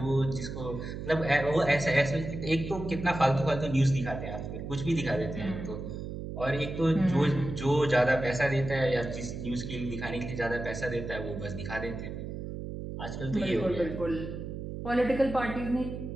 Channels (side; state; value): right; noise; hum, 7 dB below the sound